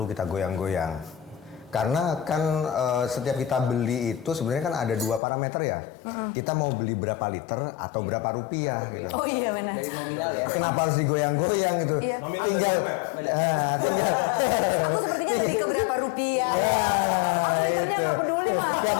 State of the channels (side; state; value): right; drops out; at 5.2 s